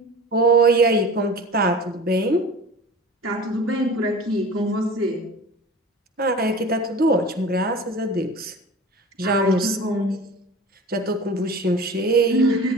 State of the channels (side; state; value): both; normal; correlation 0.37